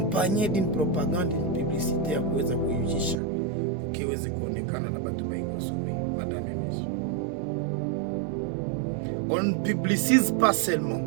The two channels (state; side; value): drops out; left; at 3.2 s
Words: d'une propagande, d'une publicité à kuweza kuyujisha, ukiweze kuonekana na batu baikosome. Madame et messieurs, on ne publicise pas seulement